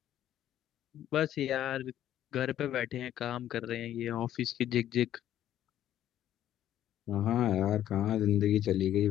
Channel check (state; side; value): quieter; right; 11.7 dB